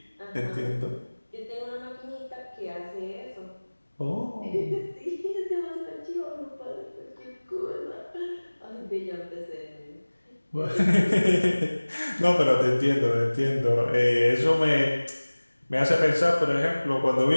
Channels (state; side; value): inverted; both; correlation -1.00